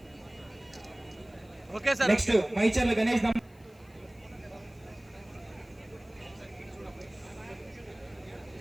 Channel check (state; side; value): noise; left; hiss, 30 dB below the sound